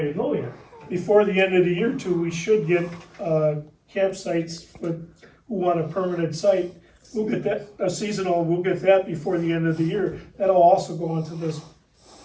to go yet. before the end of the year too, we should get campsites with, who want a permanent site. We'll get that, a seasonal, we'll get that before the end of the year. That'll also go into this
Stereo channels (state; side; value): identical; both; correlation 1.00